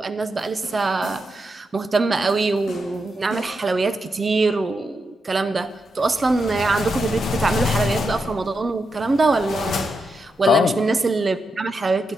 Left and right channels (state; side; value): normal; both; correlation 0.85